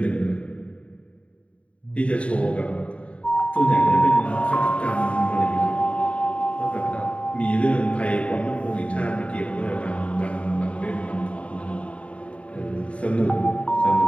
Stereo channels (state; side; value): late; right; 0.063 ms